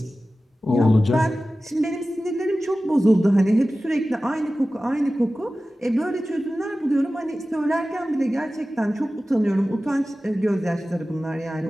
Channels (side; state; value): both; normal; correlation 0.95